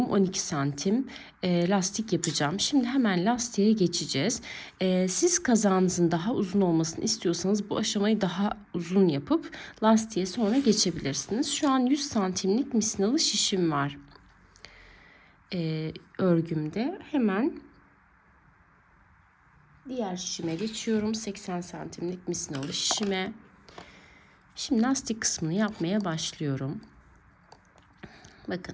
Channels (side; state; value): both; identical; correlation 1.00